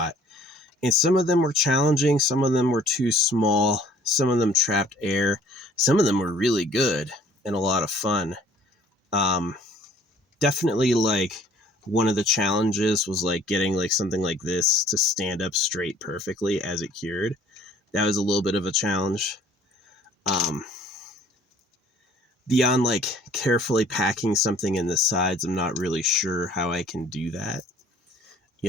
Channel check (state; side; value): normal; both; correlation 0.55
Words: And some of them were challenging, some of them were too small, some of them trapped air, some of them were really good and a lot of fun. Definitely like one of the challenges was like getting like something like this to stand up straight perfectly as it cured. That was a little bit of a challenge. Beyond like carefully packing something in the sides, I'm not really sure how I can do that,